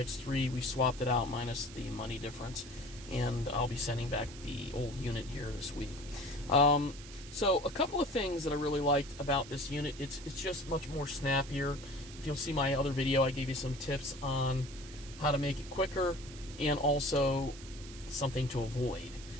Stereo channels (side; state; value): right; noise; hiss, 16 dB below the sound